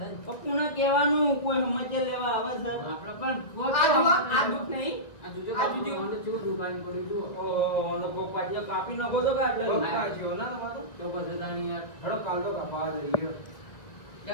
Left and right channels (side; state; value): right; late; 1.8 ms